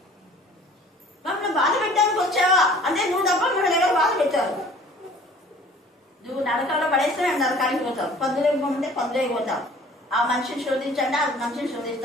మమ్మల్ని బాధ పెట్టడానికి వచ్చావా అంటే నువ్వు తప్ప మూడు దగ్గర బాధ పెట్టారు. నువ్వు నరకంలో పడేస్తే మేము నరకానికి పోతావు, పందులేకి పోతే పందులేకి పోతావు. ఆ మనిషిని శోధించండి, ఆ మనిషిని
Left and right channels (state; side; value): normal; both; correlation 0.49